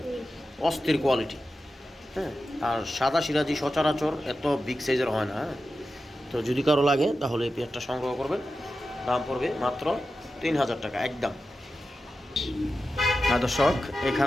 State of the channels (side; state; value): both; normal; correlation 0.92